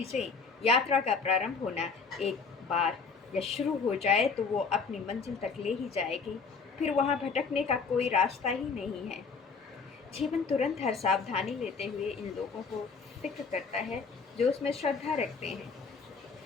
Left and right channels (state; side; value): quieter; right; 5.1 dB